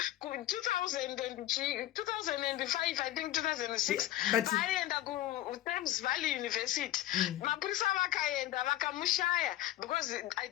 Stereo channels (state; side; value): quieter; right; 14.3 dB